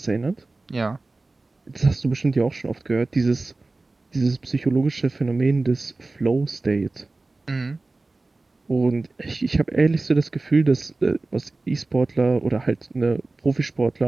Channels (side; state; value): left; quieter; 3.3 dB